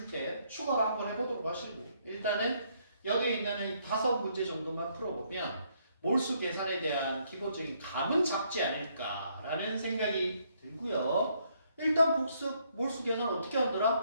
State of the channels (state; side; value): inverted; both; correlation -0.71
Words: 때 추가로 한번 해보도록 하시고요. 일단은 여기 있는 5문제 정도만 풀어보면 몰수 계산에 대한 기본적인 감은 잡지 않을까라는 생각이 들고요. 일단 복습, 몰수 계산 어떻게